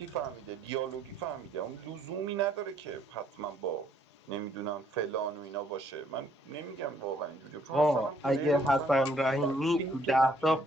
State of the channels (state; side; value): normal; both; correlation 0.66